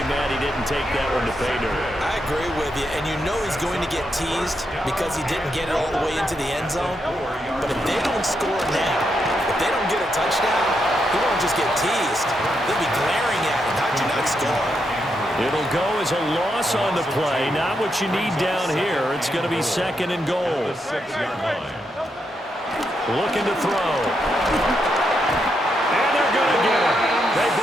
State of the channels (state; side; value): normal; both; correlation 0.82